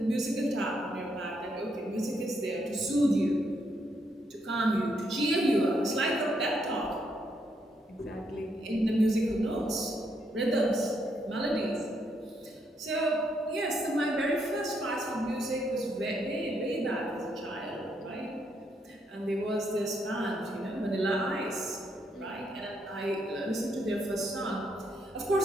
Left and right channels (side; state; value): both; normal; correlation 0.76